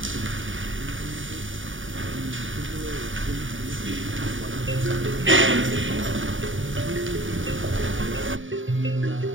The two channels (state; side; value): late; left; 0.57 ms